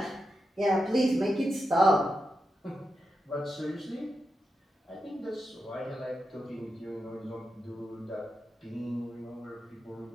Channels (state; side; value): normal; both; correlation 0.88